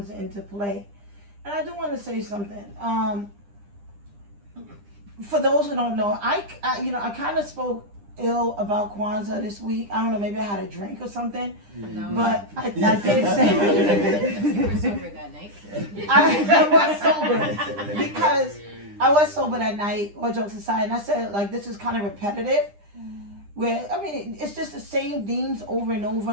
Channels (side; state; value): left; late; 9.9 ms